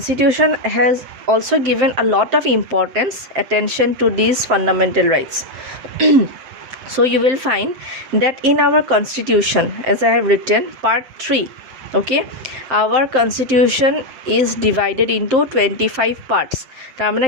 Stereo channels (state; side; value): late; left; 7.7 ms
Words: has also given a lot of importance, attention to these fundamental rights. So you will find that in our Constitution, as I have written, part 3, okay, our Constitution is divided into 25 parts. তাৰমানে